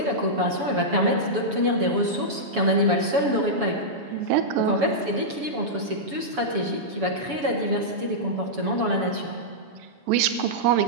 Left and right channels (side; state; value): left; late; 7.0 ms